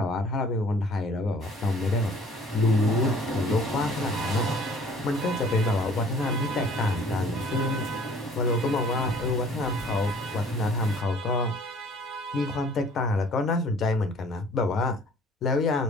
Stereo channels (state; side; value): normal; both; correlation 0.53